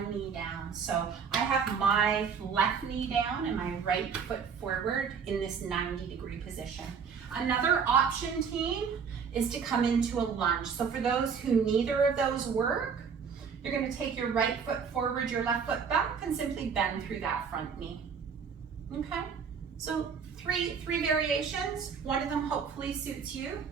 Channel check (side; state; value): left; quieter; 6.3 dB